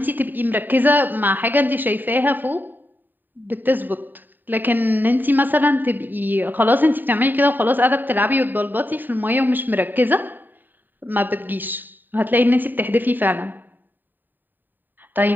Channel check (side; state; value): left; late; 0.091 ms